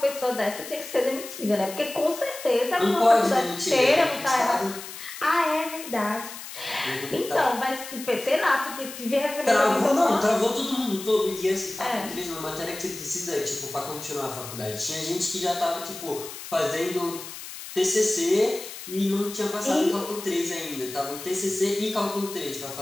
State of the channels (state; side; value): noise; left; hiss, 12 dB below the sound